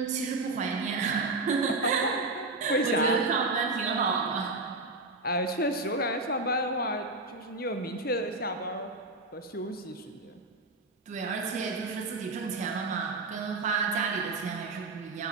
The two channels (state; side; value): quieter; left; 3.1 dB